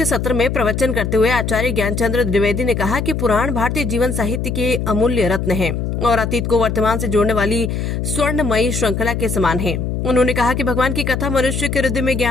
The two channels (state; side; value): noise; left; hum, 2 dB below the sound